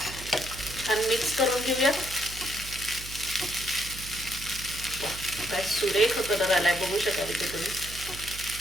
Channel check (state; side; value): noise; right; hum, 12 dB below the sound